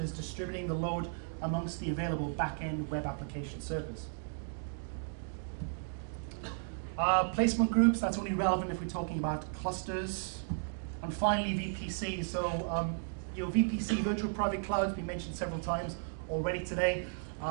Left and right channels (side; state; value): left; silent; digital silence